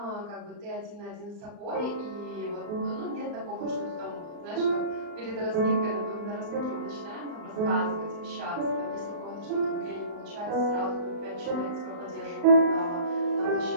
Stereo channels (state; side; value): late; left; 35 ms